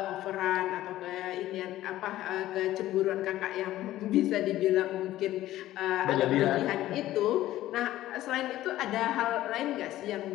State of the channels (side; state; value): right; quieter; 14.7 dB